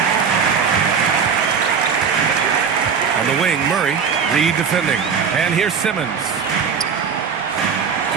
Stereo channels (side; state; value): left; quieter; 6.5 dB